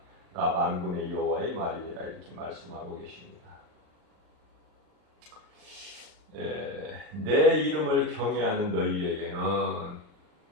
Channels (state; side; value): late; left; 39 ms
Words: 나 만군의 여호와의 말이니라. 이렇게 말씀하고 계십니다. 내 이름을 경외하는 너희에게는